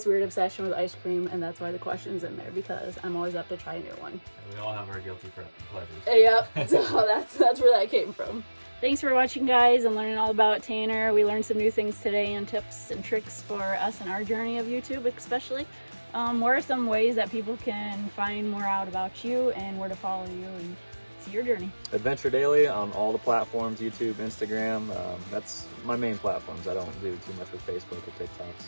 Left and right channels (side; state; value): both; inverted; correlation -1.00